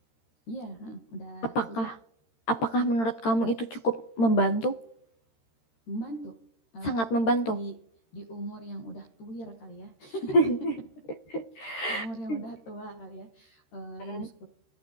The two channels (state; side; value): late; right; 13 ms